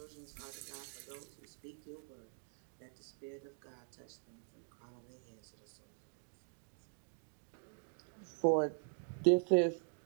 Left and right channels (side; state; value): left; silent; digital silence